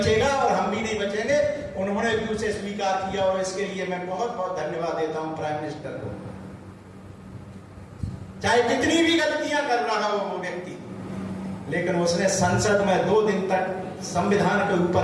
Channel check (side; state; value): both; identical; correlation 1.00